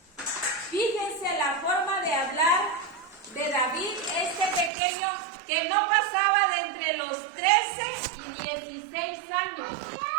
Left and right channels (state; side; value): drops out; left; at 4.7 s